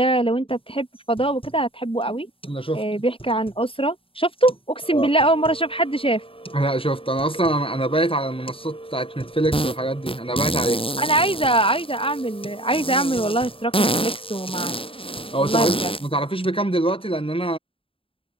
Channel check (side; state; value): right; late; 0.26 ms